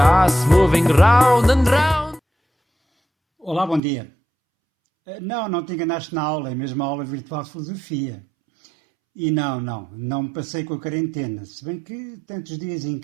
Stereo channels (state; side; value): drops out; left; at 3.8 s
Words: moving round and round. Olá, bom dia. Não te enganaste na aula, é mesmo a aula virtual de filosofia. E não me passei com a quarentena, se bem que tantos dias em